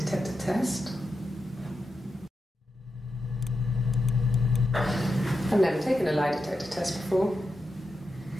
test. I've never taken a lie detector test before.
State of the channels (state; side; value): normal; both; correlation 0.88